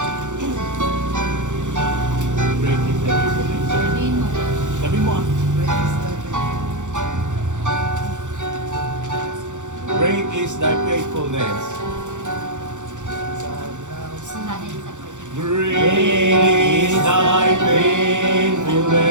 Sabi mo ah. Great is thy faithfulness. Great is thy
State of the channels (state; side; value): late; left; 0.85 ms